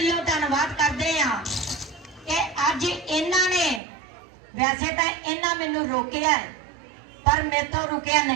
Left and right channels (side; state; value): left; drops out; at 3.8 s